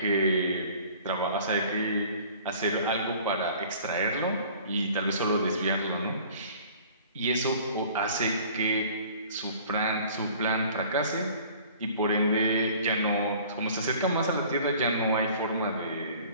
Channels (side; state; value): both; inverted; correlation -0.49